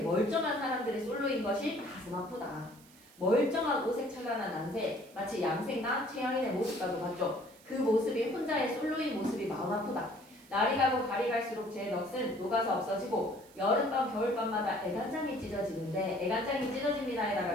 사람들이 솔로인 것이 가슴 아프다. 멀쩡한 오색 찬란한 난새 마치 양생과 최양인의 모습과도 같죠. 그 모습이 혼자의 솔로인 모습이 마음 아프다. 날이 가고 달이 갈수록 제 넋은 녹아서 없어지고 여름밤 겨울밤마다 애간장이 찢어지는데 애간장이 찢어집니다에다가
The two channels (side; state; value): right; noise; hiss, 25 dB below the sound